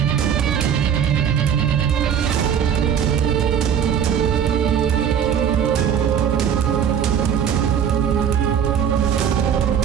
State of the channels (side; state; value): left; quieter; 8.5 dB